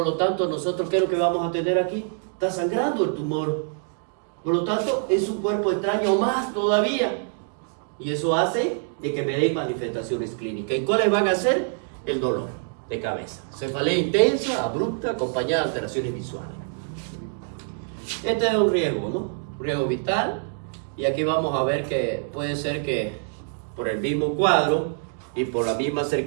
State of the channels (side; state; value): left; silent; digital silence